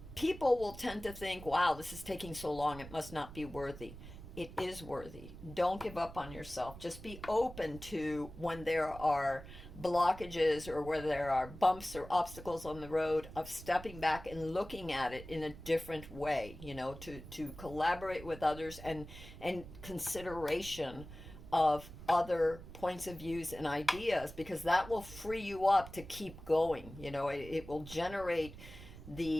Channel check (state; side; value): noise; right; rumble, 14 dB below the sound